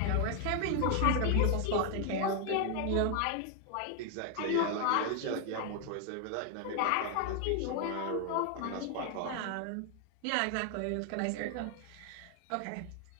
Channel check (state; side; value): different; both; correlation 0.00